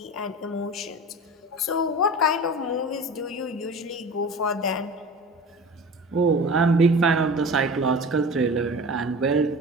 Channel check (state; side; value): normal; both; correlation 0.36